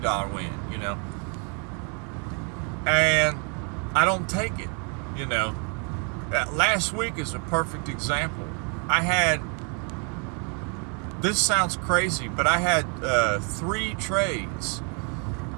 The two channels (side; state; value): left; quieter; 37.2 dB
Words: win, you know. And I don't take it. You know, last week is a perfect example. This sounds crazy, but I had 3 trades.